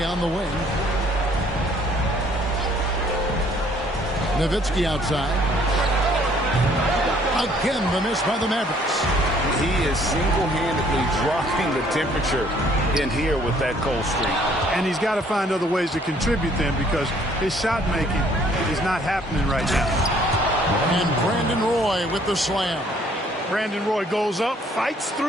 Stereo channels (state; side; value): normal; both; correlation 0.61